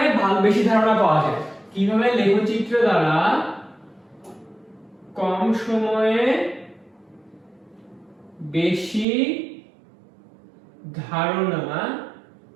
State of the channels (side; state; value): left; drops out; at 9.1 s